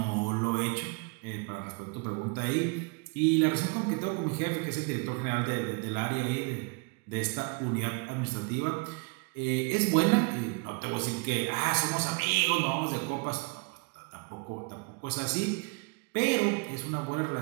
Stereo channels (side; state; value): left; quieter; 32.4 dB